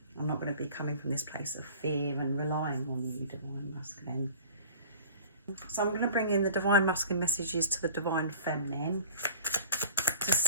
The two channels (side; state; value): both; inverted; correlation -0.44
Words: I'm not going to be coming from this place of fear and relying on you, Divine Masculine. So I'm going to bring in the Divine Masculine messages to the Divine Feminine to